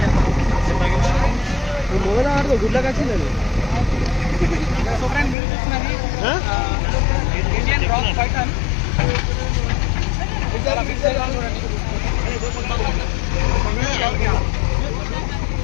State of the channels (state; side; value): drops out; right; at 5.4 s